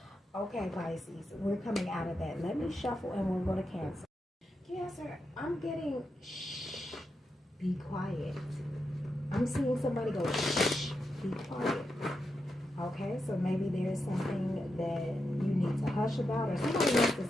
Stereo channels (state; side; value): normal; both; correlation 0.86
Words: Okay, Pisces, we're coming out of that. Let me shuffle and we'll go to Cancer. Cancer, I'm getting shh, be quiet. I'm seeing somebody go shh, be quiet. Okay, so maybe there's something that you need to hush about, or somebody wants to